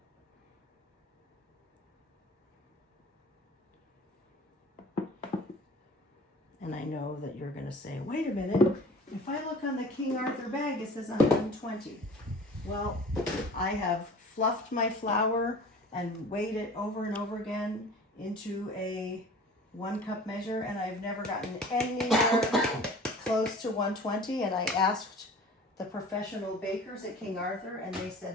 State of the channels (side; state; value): both; normal; correlation 0.43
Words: And I know that you're going to say, wait a minute, if I look on the King Arthur bag, it says 120. Well, I have fluffed my flour and weighed it over and over again into a 1 cup measure, and I've never gotten anywhere close to 120. And I asked the professional bakers at King Arthur, and they